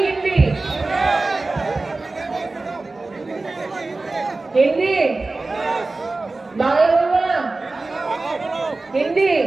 হিন্দি? হিন্দি বাংলা বলবো না, হিন্দি।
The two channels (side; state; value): left; quieter; 3.4 dB